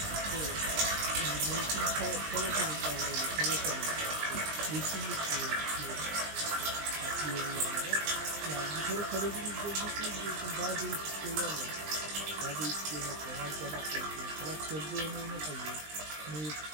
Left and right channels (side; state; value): left; late; 20 ms